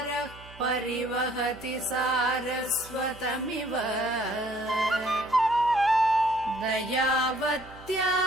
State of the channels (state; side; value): noise; right; hum, 20 dB below the sound